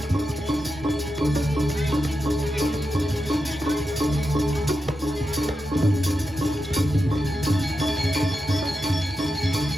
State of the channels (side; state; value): both; normal; correlation 0.88